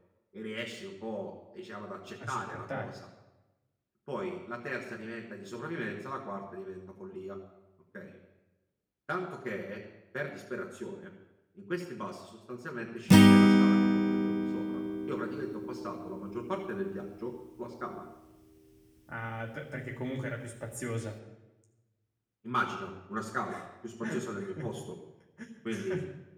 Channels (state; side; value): identical; both; correlation 1.00